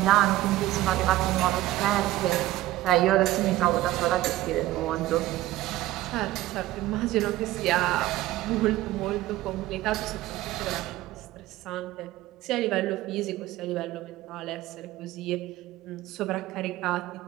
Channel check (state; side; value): quieter; left; 16.0 dB